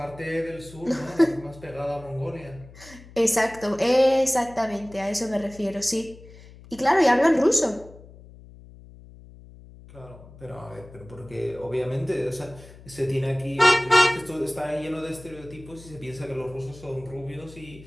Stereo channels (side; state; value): left; noise; hum, 20 dB below the sound